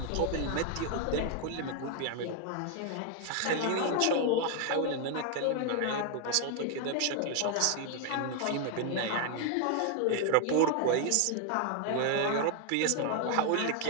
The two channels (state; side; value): different; both; correlation 0.01